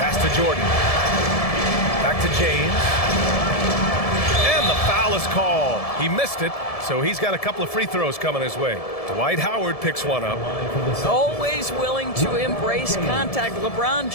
to Jordan. Back to James. And the foul is called. He missed it, so he's got a couple of free throws coming his way. Dwight Howard picks one up. Always willing to embrace contact. LeBron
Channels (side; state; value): right; late; 1.7 ms